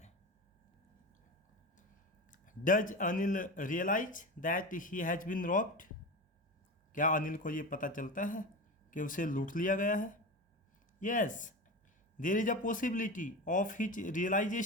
Does Anil realise that he has been robbed? क्या अनिल को ये पता चलता है कि उसे लूट लिया गया है? Yes, there is a possibility of his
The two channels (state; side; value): normal; both; correlation 0.26